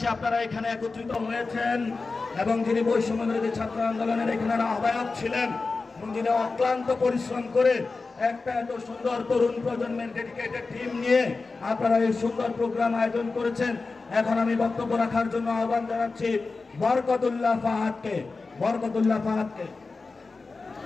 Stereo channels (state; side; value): quieter; right; 4.0 dB